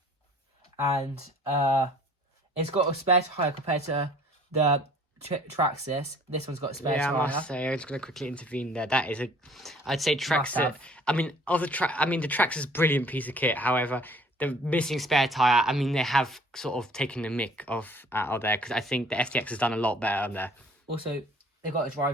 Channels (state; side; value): normal; both; correlation 0.53